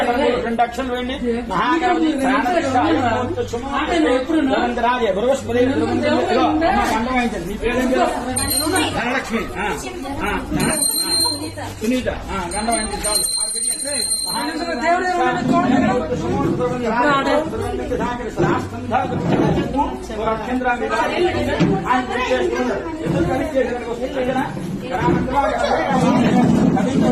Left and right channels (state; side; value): identical; both; correlation 1.00